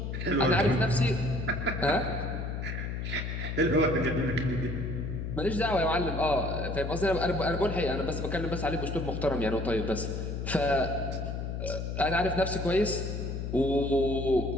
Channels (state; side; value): noise; left; hum, 4 dB below the sound